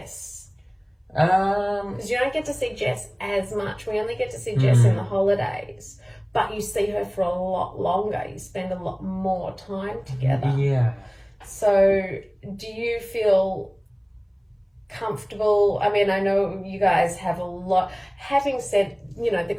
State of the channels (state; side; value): identical; both; correlation 1.00